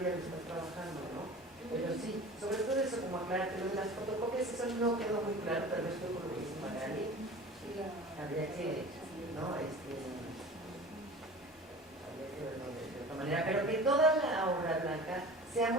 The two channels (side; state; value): both; normal; correlation 0.38